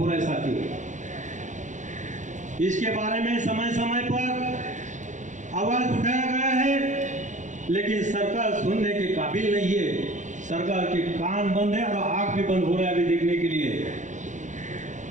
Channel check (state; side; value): late; left; 0.36 ms